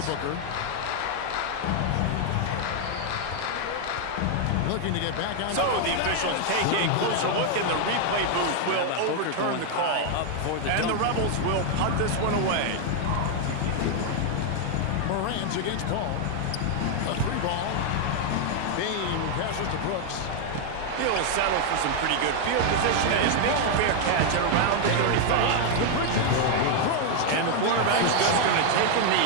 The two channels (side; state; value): both; different; correlation 0.00